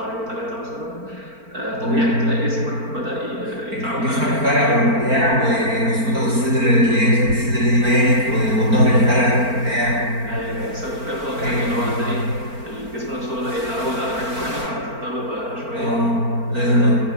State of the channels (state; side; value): late; left; 4.4 ms